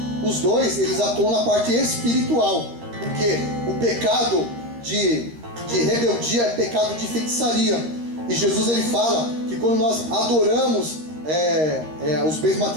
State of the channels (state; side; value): late; left; 13 ms